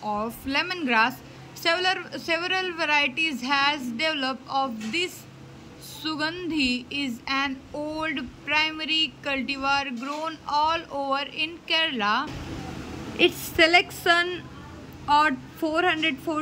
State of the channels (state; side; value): identical; both; correlation 1.00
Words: of lemongrass, several varieties has developed of this. Sugandhi is an old primary cultivar grown all over in Kerala. Its selection at